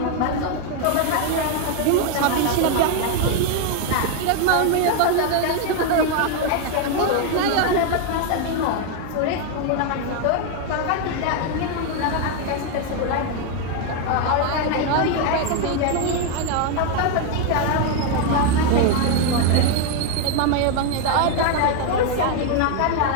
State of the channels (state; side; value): different; both; correlation 0.01